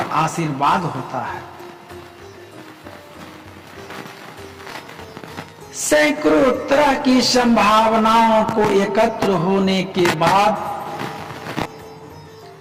आशीर्वाद होता है। सैकड़ों तरह की संभावनाओं को एकत्र होने के बाद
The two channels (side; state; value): both; identical; correlation 1.00